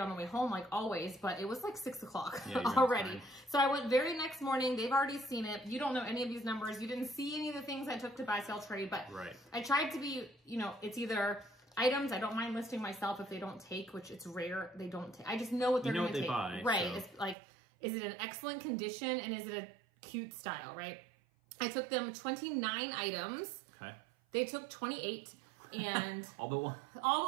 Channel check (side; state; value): left; drops out; at 17.4 s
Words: the way home like always, but it was like 6 o'clock already. So I went very next morning. They've already seen it. You don't know any of these numbers. You didn't see any of the things I took to buy sell trade, but I tried to be, you know, it's either items I don't mind listing myself if they don't take, which it's rare they don't take. I just know what they're going to take. Buy, right. So. It's like, is it an excellent condition and is it a cute style, right? I took them 29 items. Okay. They took 28. And all but one.